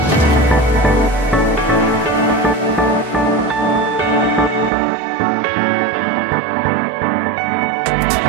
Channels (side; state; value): left; drops out; at 4.7 s